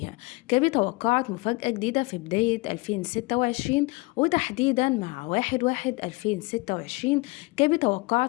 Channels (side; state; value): right; quieter; 24.9 dB